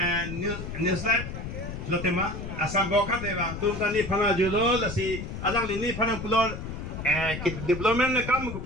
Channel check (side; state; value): left; noise; rumble, 7 dB below the sound